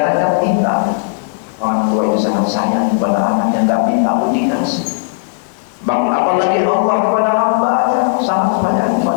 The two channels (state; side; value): silent; right; digital silence